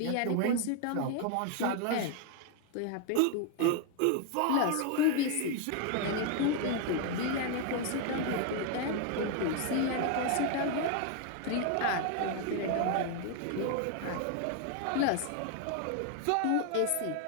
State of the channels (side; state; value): both; different; correlation 0.00